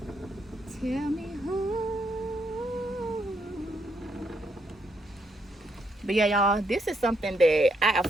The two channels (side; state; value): both; normal; correlation 0.76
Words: Tell me who. But yeah, y'all, this is something that I